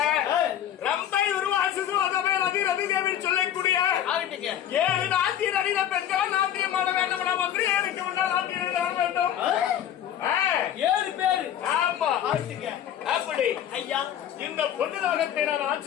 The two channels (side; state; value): right; quieter; 10.5 dB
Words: ரம்பை உருவாசு அதவே ரதி ரதி தேவி சொல்லக்கூடிய 7 நாட்டிய நடிக பெண்கள் நாட்டியம் ஆட வேண்டும். மந்திரி எனக்கு முன்னால் நாட்டியம் ஆட வேண்டும். 7 பேர். ஆமா. அப்படி ஐயா இந்த பொண்ணு லோகத்தை நான்